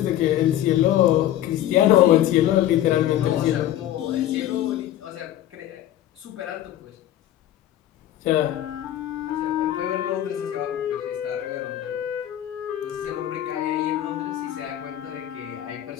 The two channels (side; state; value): right; quieter; 12.4 dB